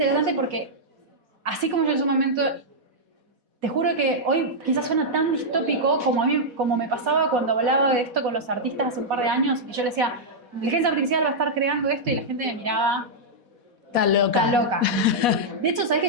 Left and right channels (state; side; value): late; left; 4.1 ms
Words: porque, así como yo en su momento, te juro que hoy quizás suena tan distópico como me pasaba cuando hablaba de esto con los artistas hace un par de años, y yo les decía, la inteligencia artificial va a estar creando esto, y la gente me miraba, Está loca. está loca. De hecho, ¿sabes que